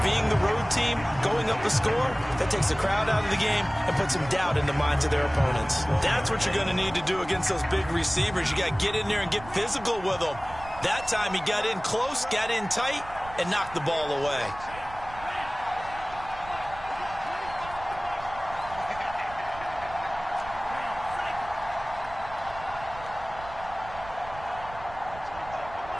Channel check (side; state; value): right; noise; rumble, 16 dB below the sound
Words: Being the road team, going up a score, that takes the crowd out of the game and puts some doubt in the minds of their opponents. That's what you're going to need to do against those big receivers. You got to get in there and get physical with them. That time he got in close, got in tight, and knocked the ball away.